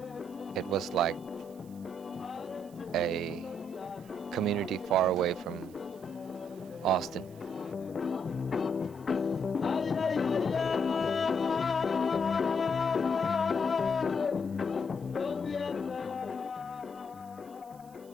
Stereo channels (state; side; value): noise; right; hiss, 26 dB below the sound